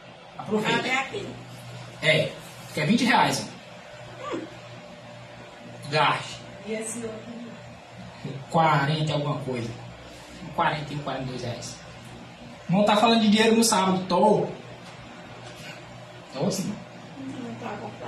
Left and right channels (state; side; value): identical; both; correlation 1.00